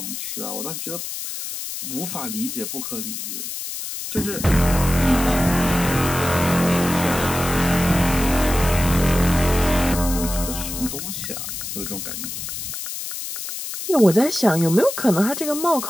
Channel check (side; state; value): left; noise; hiss, 7 dB below the sound